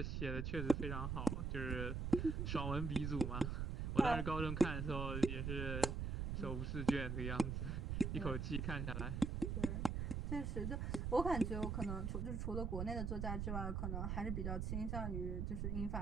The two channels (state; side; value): noise; right; rumble, 1 dB below the sound